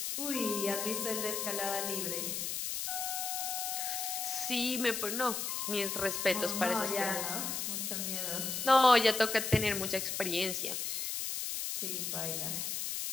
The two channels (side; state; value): left; noise; hiss, 2 dB below the sound